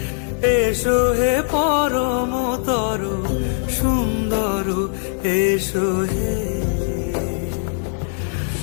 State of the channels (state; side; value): silent; right; digital silence